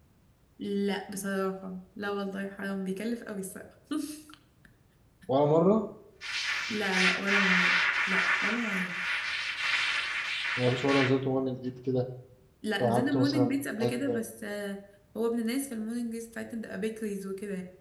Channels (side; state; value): both; identical; correlation 1.00